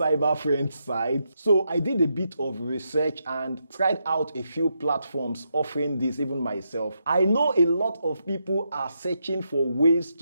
friend sites? So I did a bit of research and tried out a few platforms offering this, even myself. I know a lot of people are searching for ways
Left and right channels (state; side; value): inverted; both; correlation -0.82